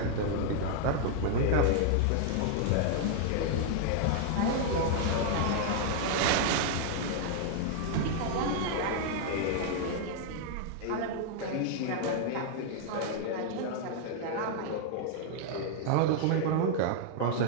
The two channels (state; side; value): different; both; correlation -0.01